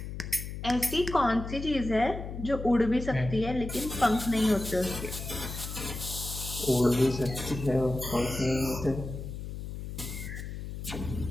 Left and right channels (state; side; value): noise; left; hum, 7 dB below the sound